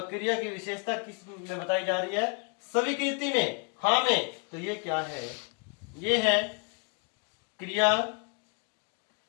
क्रिया की विशेषता किस में बताई जा रही है? स्वीकृति में, हाँ में, तो ये क्या है? ये है क्रिया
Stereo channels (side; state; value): right; quieter; 39.2 dB